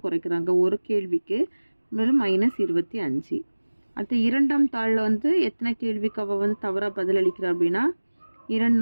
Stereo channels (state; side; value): inverted; both; correlation -1.00